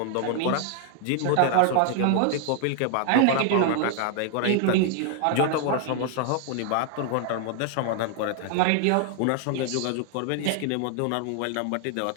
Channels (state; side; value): different; both; correlation 0.00